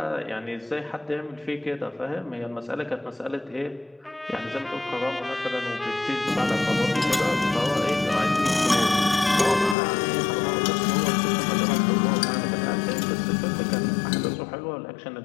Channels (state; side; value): drops out; right; at 9.8 s